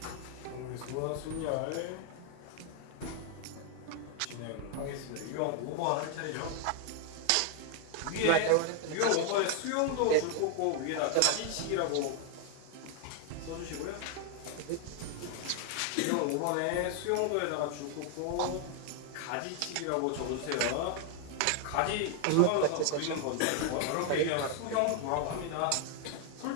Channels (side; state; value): both; different; correlation 0.00